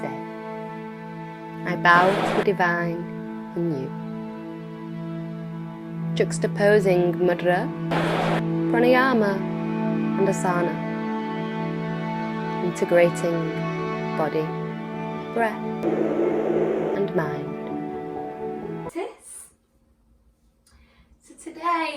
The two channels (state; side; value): identical; both; correlation 1.00